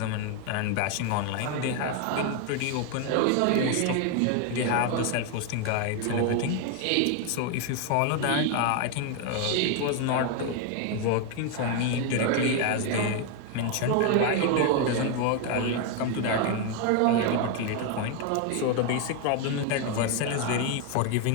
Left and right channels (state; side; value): different; both; correlation 0.01